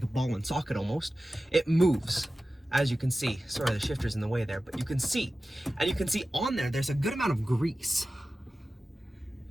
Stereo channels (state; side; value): normal; both; correlation 0.95